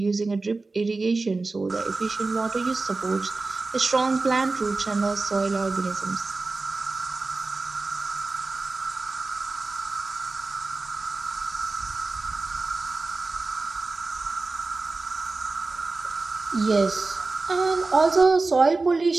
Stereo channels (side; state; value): left; quieter; 3.6 dB